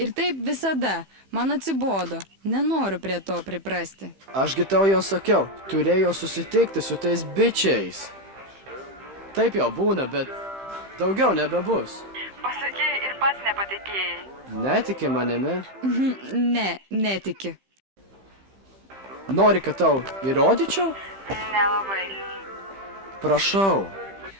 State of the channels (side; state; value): left; late; 15 ms